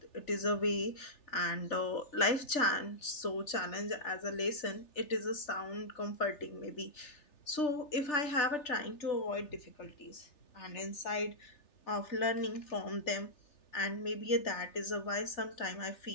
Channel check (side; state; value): right; late; 3.4 ms